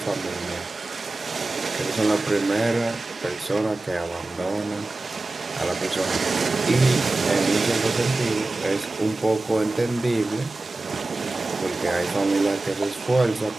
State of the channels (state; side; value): quieter; left; 3.0 dB